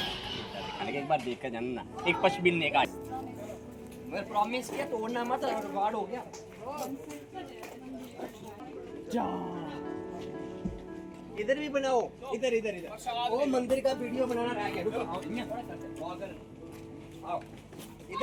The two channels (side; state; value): both; identical; correlation 1.00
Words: एक बार देख कर जाना ना, एक पश बिल ने का मैं प्रॉमिस किया तोड़ना मत, रिकॉर्ड हो गया। जा इधर भी बनाओ, इधर इधर इधर वो मंदिर का वीडियो बनाना रह गया। रुको आओ